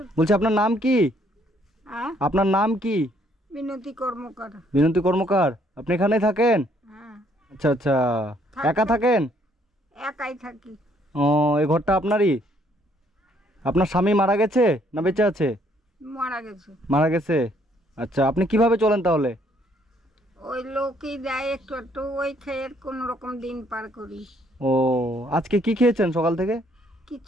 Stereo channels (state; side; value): normal; both; correlation 0.66